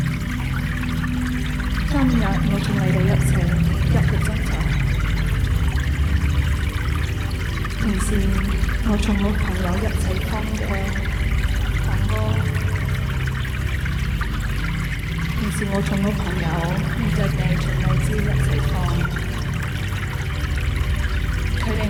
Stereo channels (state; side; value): identical; both; correlation 1.00